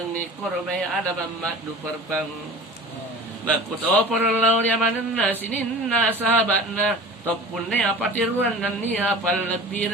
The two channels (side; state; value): both; normal; correlation 0.38